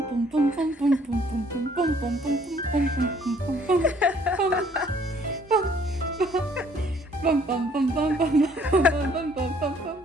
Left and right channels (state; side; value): normal; both; correlation 0.61